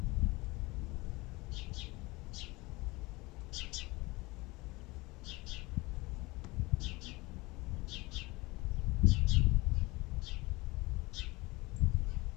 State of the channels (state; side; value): quieter; right; 22.9 dB